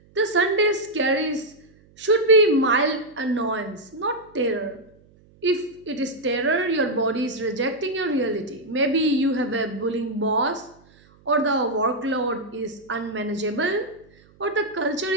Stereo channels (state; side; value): noise; right; hum, 29 dB below the sound